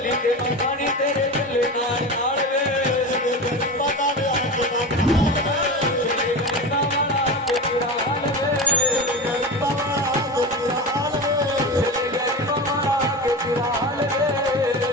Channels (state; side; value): normal; both; correlation 0.25